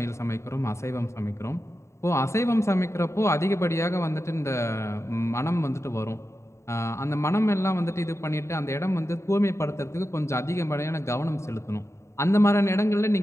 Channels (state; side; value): late; right; 0.14 ms